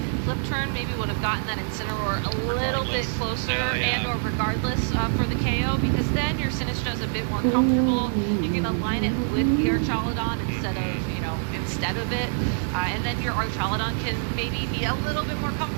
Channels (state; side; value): silent; left; 62 dB below the other